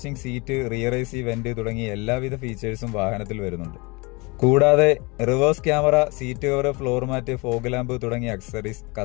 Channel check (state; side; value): quieter; right; 27.1 dB